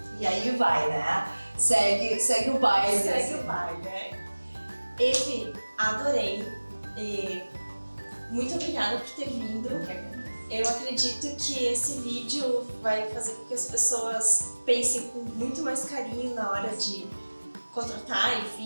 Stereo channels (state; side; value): inverted; both; correlation -1.00